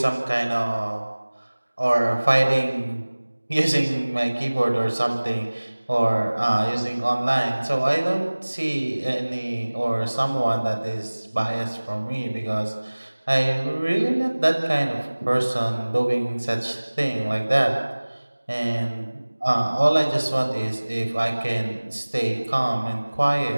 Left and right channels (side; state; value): both; inverted; correlation -1.00